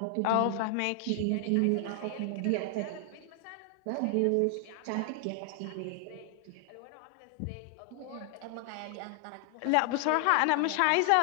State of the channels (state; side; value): different; both; correlation 0.00